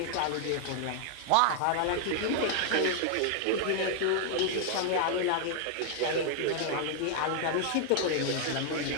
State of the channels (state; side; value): different; both; correlation 0.00